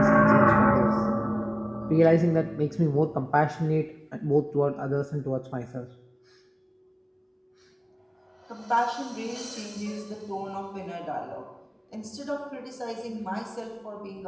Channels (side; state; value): both; identical; correlation 1.00